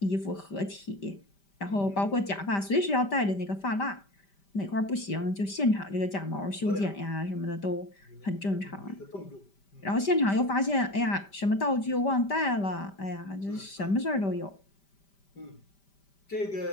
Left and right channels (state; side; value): late; right; 5.1 ms